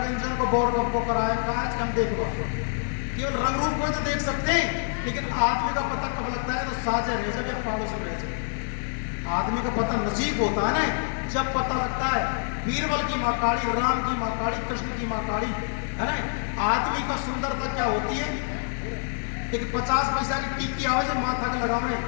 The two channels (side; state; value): right; silent; 61 dB below the other